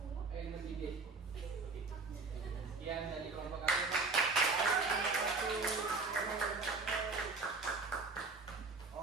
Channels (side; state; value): left; quieter; 4.0 dB